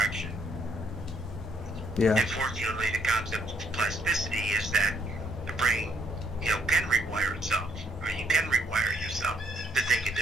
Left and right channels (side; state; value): both; normal; correlation 0.69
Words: Yeah. Unfortunately, the concept of plasticity is that the brain, can rewire itself, or you can rewire yourself to think a